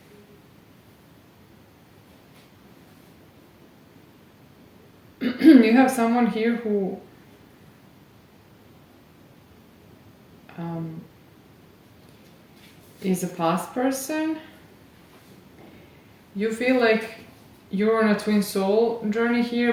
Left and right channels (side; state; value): both; identical; correlation 1.00